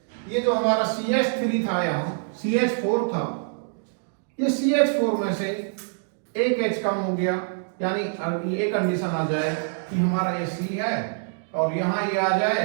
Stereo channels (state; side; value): silent; left; digital silence